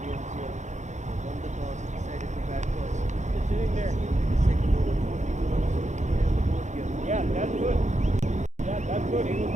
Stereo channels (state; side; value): late; left; 0.34 ms